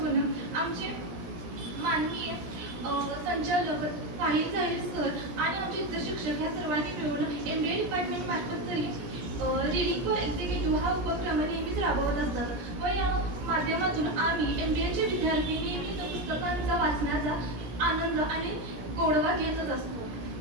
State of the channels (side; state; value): left; late; 17 ms